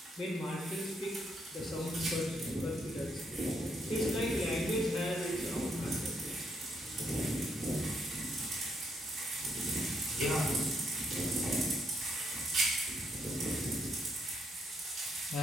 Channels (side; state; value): both; normal; correlation 0.74